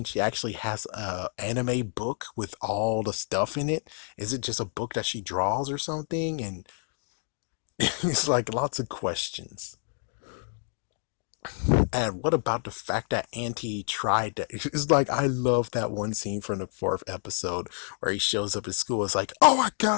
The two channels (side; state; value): right; silent; 59 dB below the other